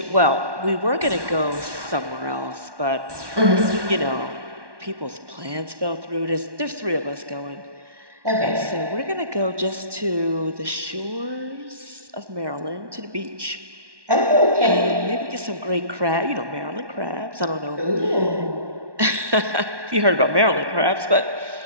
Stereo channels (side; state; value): left; late; 1.1 ms